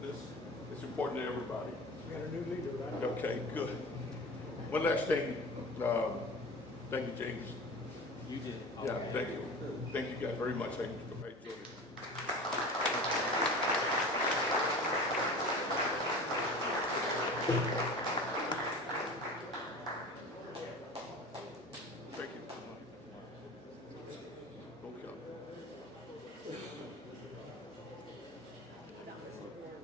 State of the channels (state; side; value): normal; both; correlation 0.36